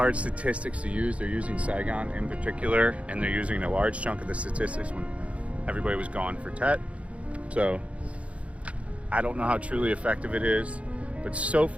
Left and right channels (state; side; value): late; left; 0.063 ms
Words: statistics to use. They're using Saigon in particular, and they're using a large chunk of the statistics when everybody was gone for Tet. So I don't know how truly effective it is, but so